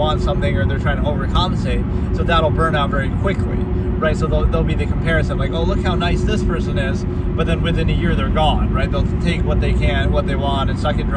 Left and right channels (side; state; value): both; identical; correlation 1.00